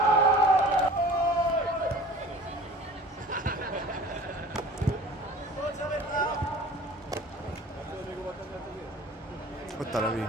Ott a Levi.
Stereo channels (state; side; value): normal; both; correlation 0.44